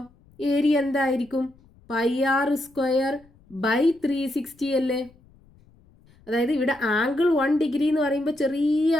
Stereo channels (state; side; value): noise; left; rumble, 29 dB below the sound